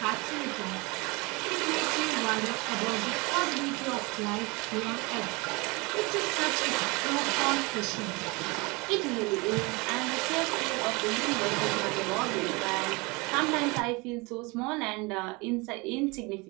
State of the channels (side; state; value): left; quieter; 26.4 dB